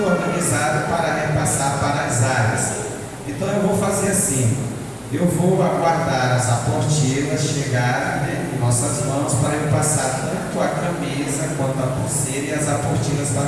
organizado para repassar para as áreas. Então eu vou fazer assim, eu vou aguardar as aportilas chegarem em nossas mãos para eu passar tanto a camisa quanto a pulseira e as aportilas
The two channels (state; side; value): identical; both; correlation 1.00